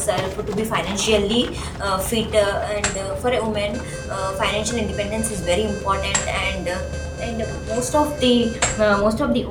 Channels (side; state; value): both; identical; correlation 1.00